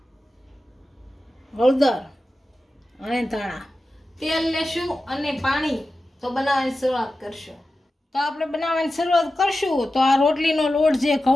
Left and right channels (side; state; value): both; normal; correlation 0.93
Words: હળદર અને ધાણા। તેલ લેશું અને પાણી તો બનાવવાની શરૂઆત કરશું। તો આપણે બનાવવાની શરૂઆત કરશું તો આ રોટલીનો લોટ જે